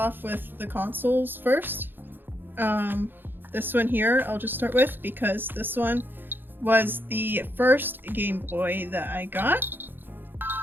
with the consoles first. This one here I'll just start with because this one was the first Game Boy that I got.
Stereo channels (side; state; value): left; late; 0.097 ms